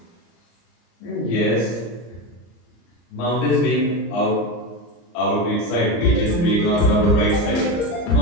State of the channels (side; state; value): right; late; 34 ms